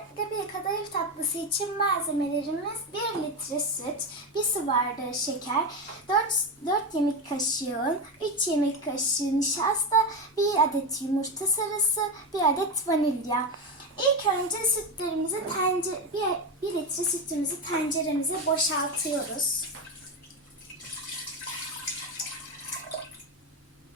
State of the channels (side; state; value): both; normal; correlation 0.15